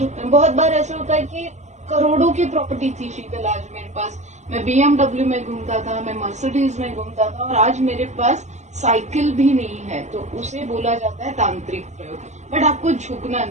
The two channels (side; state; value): left; late; 0.33 ms